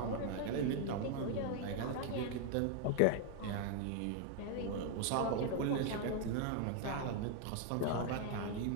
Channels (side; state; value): both; different; correlation 0.01